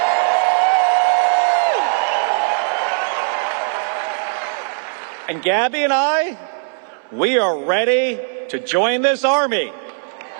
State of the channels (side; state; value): left; silent; 64 dB below the other